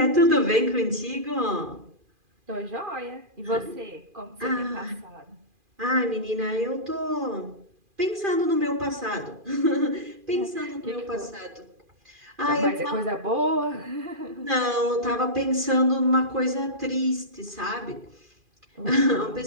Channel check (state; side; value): late; left; 2.4 ms